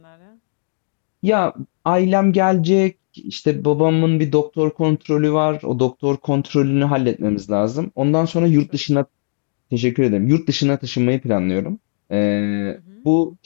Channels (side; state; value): right; silent; digital silence